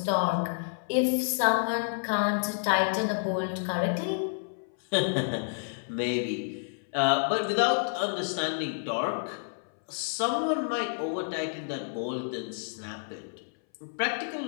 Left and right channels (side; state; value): right; silent; 58 dB below the other